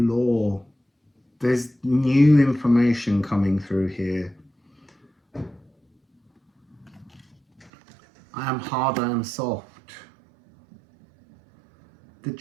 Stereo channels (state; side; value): drops out; left; at 7.7 s